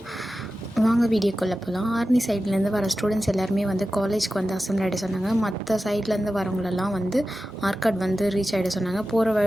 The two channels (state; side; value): normal; both; correlation 0.93